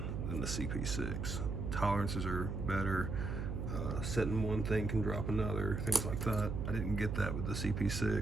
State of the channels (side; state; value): right; noise; hum, 3 dB below the sound